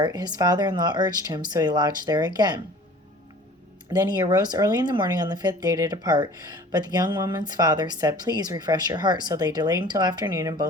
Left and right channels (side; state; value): both; normal; correlation 0.46